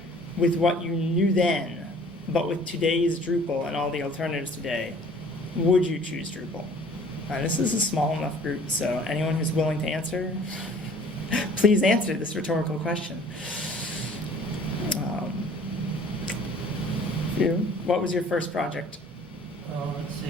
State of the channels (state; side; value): normal; both; correlation 0.52